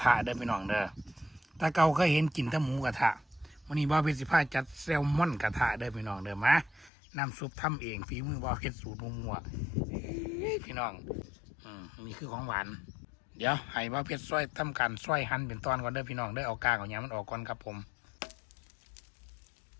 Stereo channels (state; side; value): drops out; right; at 6.9 s